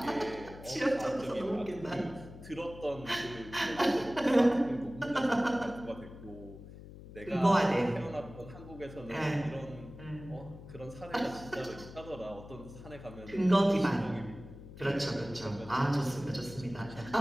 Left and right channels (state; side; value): noise; left; hum, 15 dB below the sound